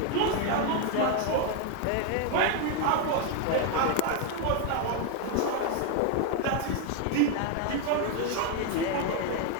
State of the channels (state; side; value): different; both; correlation 0.01